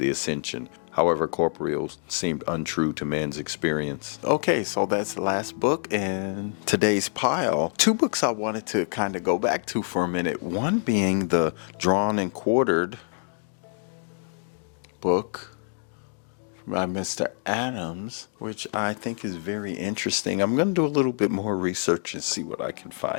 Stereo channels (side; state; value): right; silent; 56 dB below the other